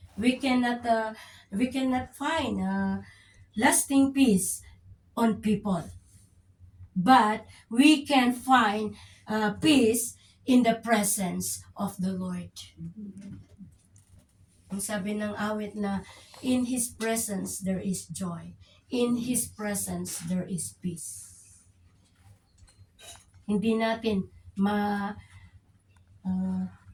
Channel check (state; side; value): identical; both; correlation 1.00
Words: We cannot find lasting peace on people. But we can find peace in the presence of the Lord. Ang sabi ng awit na, in His presence there is joy. In His presence there is peace. Hindi natin